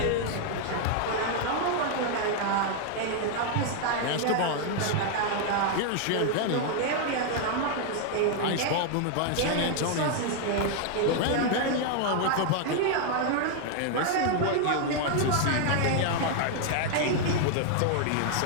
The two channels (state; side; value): different; both; correlation 0.00